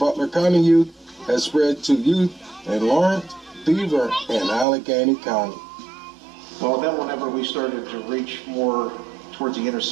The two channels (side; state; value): left; drops out; at 4.7 s